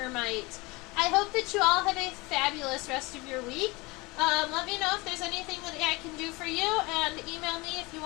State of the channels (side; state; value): right; quieter; 24.3 dB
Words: I hope that you all have a fabulous rest of your week. Let me know if there's anything that I can do for you, and email me if you